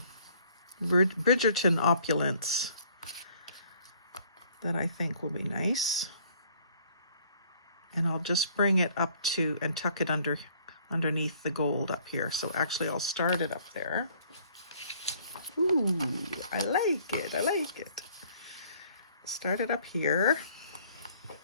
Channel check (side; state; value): both; inverted; correlation -0.59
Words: Bridgerton opulence that I think will be nice. And I'll just bring it up to and tuck it underneath the gold up here. So actually I'll start it up there. Ooh, I like it, I like it. Start it up here